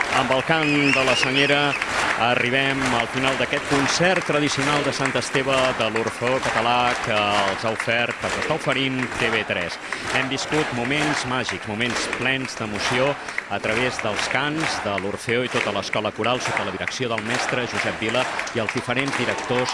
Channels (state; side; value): identical; both; correlation 1.00